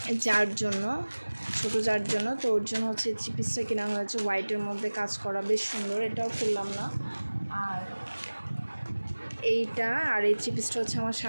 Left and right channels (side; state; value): both; inverted; correlation -1.00